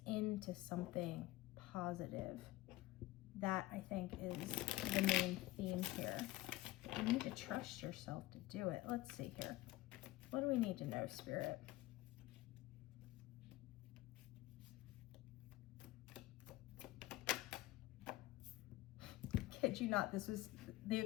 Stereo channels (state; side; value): quieter; right; 17.7 dB